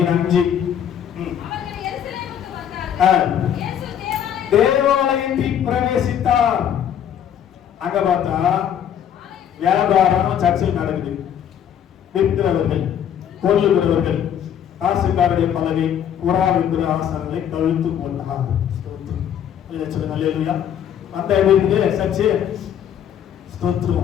தேவாலயத்தில் பிரவேசித்தார். அங்க பார்த்தா வியாபாரம் சர்ச்சில் நடக்குது. விற்கிறவர்கள், கொல்லுகிறவர்கள், காசுக்காரருடைய பலகை, புறா விற்கிற ஆசனங்களை கழுத்து போட்டார். சொல்லுங்க, அல்லேலூயா. அந்த எப்படி சர்ச்சு?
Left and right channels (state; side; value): quieter; right; 9.4 dB